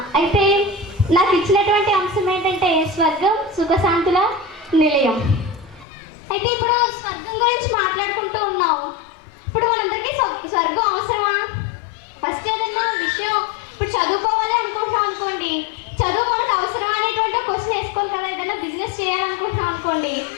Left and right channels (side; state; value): right; drops out; at 5.9 s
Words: అయితే నాకు ఇచ్చినటువంటి అంశం ఏంటంటే స్వర్గం సుఖశాంతుల నిలయం. అయితే ఇప్పుడు స్వర్గం గురించి మాట్లాడుకుంటూ ఉన్నాం. ఇప్పుడు మనందరికీ స్వర్గం అవసరమా? ఫస్ట్ ఏదన్నా విషయం ఇప్పుడు చదువుకోవాలి అనుకుంటున్నాం అనుకోండి, చదువు మనకు అవసరం అనేటువంటి క్వశ్చన్ వేసుకోవాలి కదా. ఏదైనా బిజినెస్ చేయాలనుకుంటున్నాం అనుకోండి,